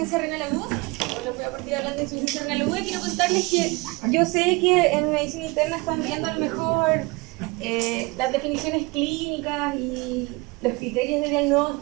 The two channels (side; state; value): left; quieter; 25.2 dB